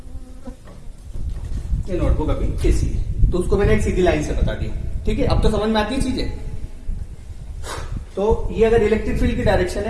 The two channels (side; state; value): both; identical; correlation 1.00